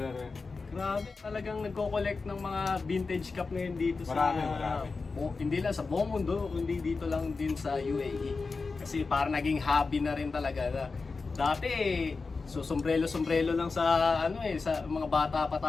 Grabe, talagang nagko-collect ng mga vintage cup ngayon dito Marami. Hindi lang sa buong mundo, kundi dito lang din sa UAE. Kasi parang naging hobby na rin talaga na dati so sombrero lang sa sa mga bata pa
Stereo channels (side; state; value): right; quieter; 4.2 dB